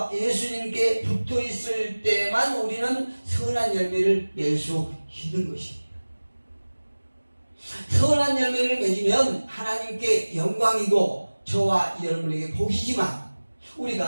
붙어 있을 때만 우리는 선한 열매를 맺을 수 있는 것입니다. 선한 열매를 맺으면 하나님께 영광이고 저와 여러분에게 복이지만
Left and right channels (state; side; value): inverted; both; correlation -1.00